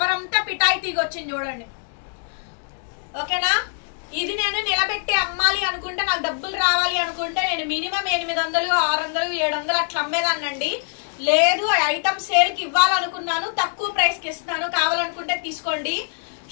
అంతా పిటాయి తీగ వచ్చింది చూడండి ఓకేనా. ఇది నేను నిలబెట్టి అమ్మాలి అనుకుంటే, నాకు డబ్బులు రావాలి అనుకుంటే నేను మినిమం 800 600 700 అట్లా అమ్మేదాన్నండి. లేదు ఐటమ్ సేల్ కి ఇవ్వాలనుకున్నాను, తక్కువ ప్రైస్ కి ఇస్తున్నాను, కావాలనుకుంటే తీసుకోండి.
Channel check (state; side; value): silent; right; digital silence